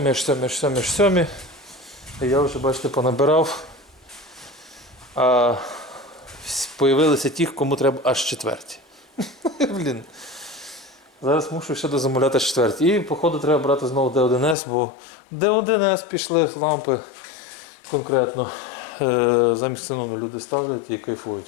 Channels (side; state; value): right; drops out; at 14.6 s